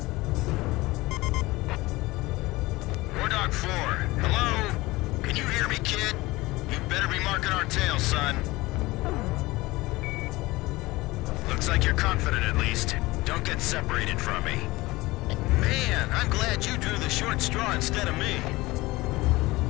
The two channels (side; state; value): right; quieter; 20.4 dB